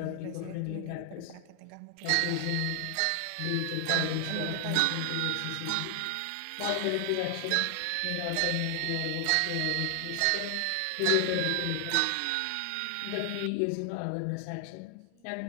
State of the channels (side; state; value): both; different; correlation 0.00